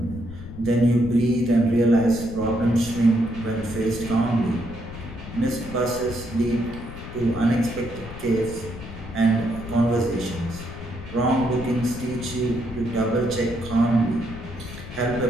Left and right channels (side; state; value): left; noise; rumble, 12 dB below the sound